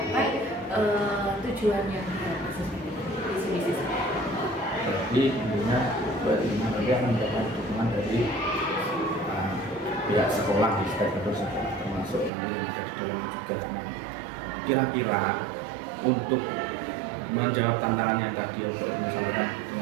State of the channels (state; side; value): drops out; left; at 12.3 s